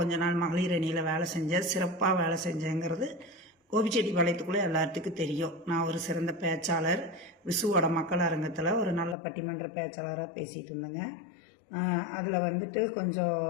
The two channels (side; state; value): right; drops out; at 9.2 s